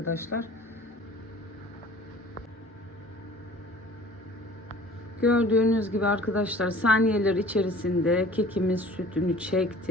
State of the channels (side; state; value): both; normal; correlation 0.48